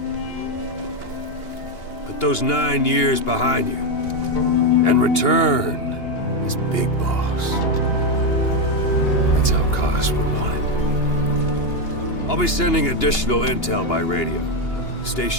Put those 9 years behind you, and return as Big Boss. That's how Koss would want it. I'll be sending additional intel by radio. Stay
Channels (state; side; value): late; right; 2.8 ms